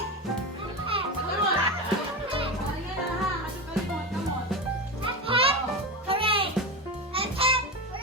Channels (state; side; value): normal; both; correlation 0.20